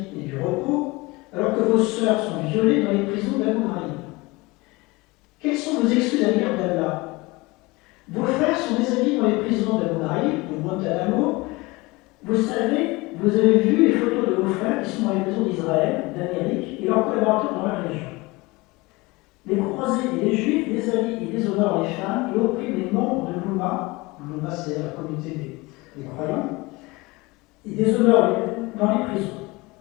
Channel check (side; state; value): right; quieter; 23.2 dB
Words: et du repos alors que vos sœurs sont violées dans les prisons d'Abu Ghraib? Quelles sont vos excuses à l'égard d'Allah? Vos frères sont déshabillés dans les prisons d'Abu Ghraib, de Guantanamo. Vous savez, vous avez vu les photos de vos frères qui sont dans les prisons d'Israël, d'Amérique et leurs collaborateurs dans la région. Les croisés et les juifs déshabillent et déshonorent les femmes et oppriment les membres de l'Oumma. L'Oumma, c'est la communauté des croyants. Ils déshonorent dans les prisons.